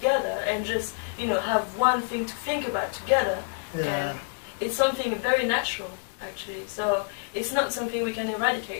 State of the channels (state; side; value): silent; right; 60 dB below the other